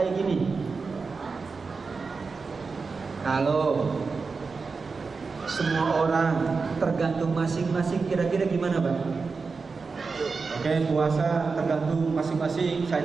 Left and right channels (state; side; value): quieter; left; 4.6 dB